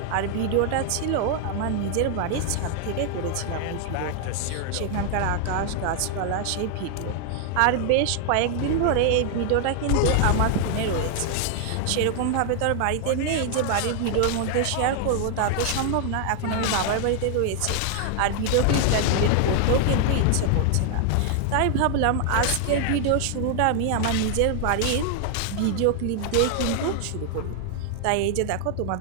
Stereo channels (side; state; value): both; different; correlation 0.00